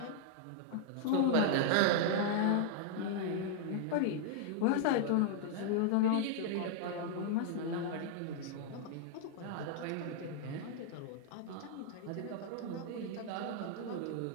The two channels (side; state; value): both; different; correlation -0.01